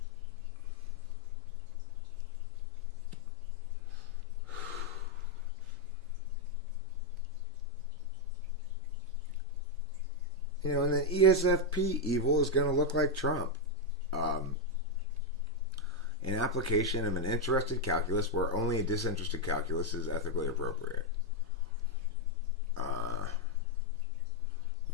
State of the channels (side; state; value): both; normal; correlation 0.01